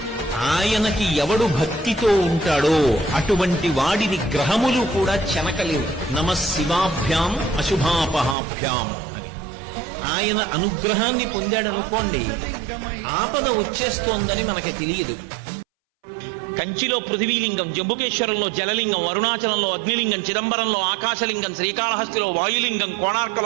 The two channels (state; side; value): drops out; left; at 8.3 s